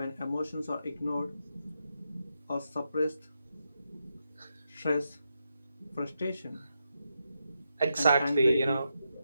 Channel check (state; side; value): inverted; both; correlation -0.85